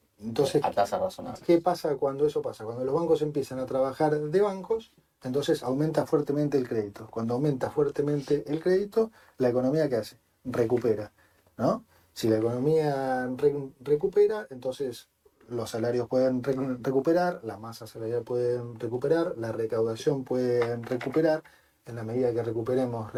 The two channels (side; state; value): both; identical; correlation 1.00